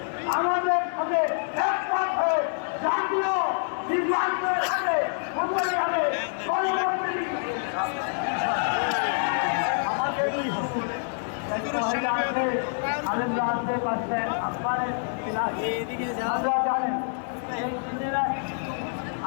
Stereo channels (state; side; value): silent; right; digital silence